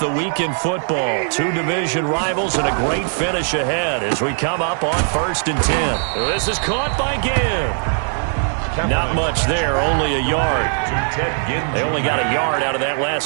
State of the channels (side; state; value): left; silent; 66 dB below the other